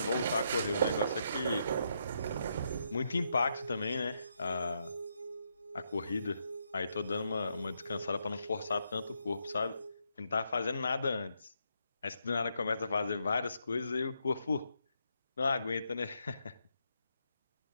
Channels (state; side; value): inverted; both; correlation -0.79